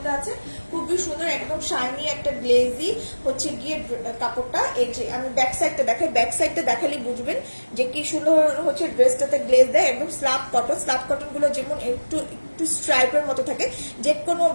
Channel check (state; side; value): inverted; both; correlation -1.00